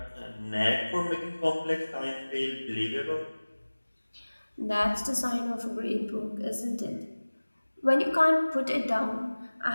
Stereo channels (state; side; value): inverted; both; correlation -1.00